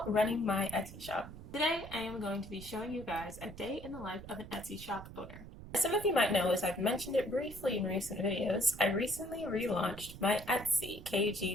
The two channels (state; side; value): noise; right; rumble, 14 dB below the sound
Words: running my Etsy shop. Today I am going to be showing you guys a day in the life of an Etsy shop owner. As some of you might know, as I've mentioned it briefly in recent videos, I recently relaunched my